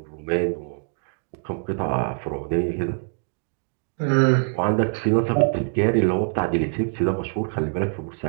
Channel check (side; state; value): left; silent; 62 dB below the other